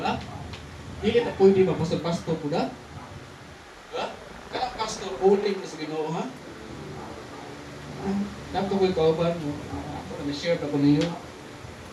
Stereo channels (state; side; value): identical; both; correlation 1.00